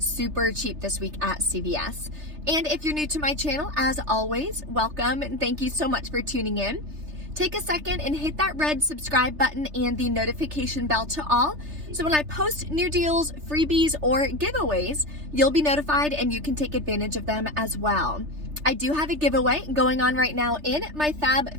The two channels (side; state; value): left; late; 3.3 ms